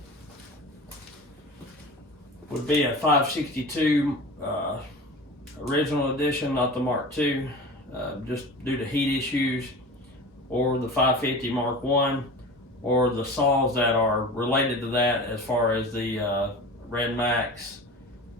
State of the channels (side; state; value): both; normal; correlation 0.34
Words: would be a 562 original edition, not the Mark II, just due to heat issues, or the 550 Mark I, or the saws that are related to that, as far as the Red Max